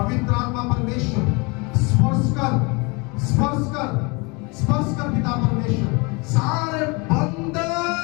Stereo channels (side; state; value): right; quieter; 28.7 dB